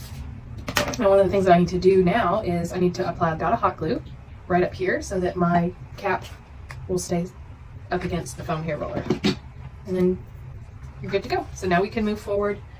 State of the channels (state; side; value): identical; both; correlation 1.00